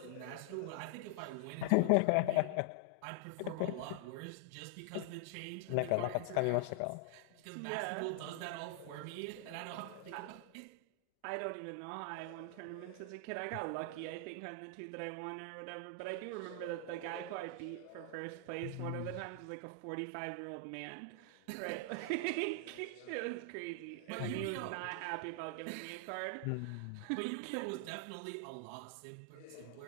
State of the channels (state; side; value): different; both; correlation 0.00